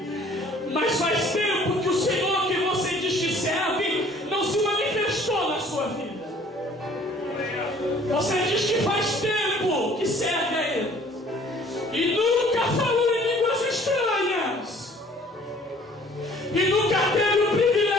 mas faz tempo que o Senhor que você diz que serve não se manifestou na sua vida. Você diz que faz tempo que serve a Ele e nunca falou em línguas estranhas, e nunca teve o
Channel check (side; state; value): both; normal; correlation 0.54